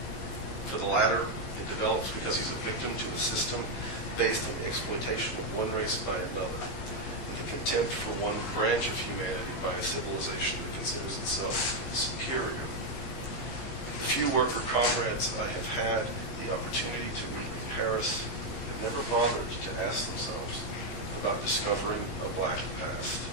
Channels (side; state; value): right; late; 15 ms